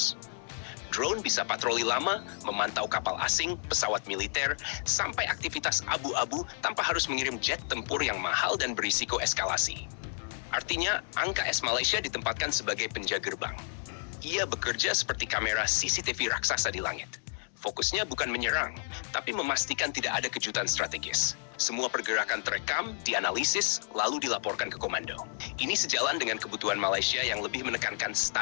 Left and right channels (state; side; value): silent; right; 56 dB below the other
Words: Drone bisa patroli lama, memantau kapal asing, pesawat militer, sampai aktivitas abu-abu tanpa harus mengirim jet tempur yang mahal dan berisiko eskalasi. Artinya, angka S Malaysia ditempatkan sebagai penjaga gerbang. Ia bekerja seperti kamera CCTV raksasa di langit. Fokusnya bukan menyerang, tapi memastikan tidak ada kejutan strategis. Semua pergerakan terekam, dianalisis, lalu dilaporkan ke komando. Ini sejalan dengan kebutuhan Malaysia yang lebih menekankan